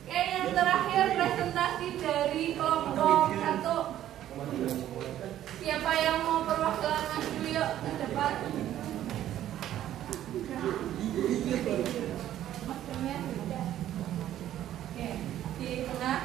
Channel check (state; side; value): quieter; left; 12.2 dB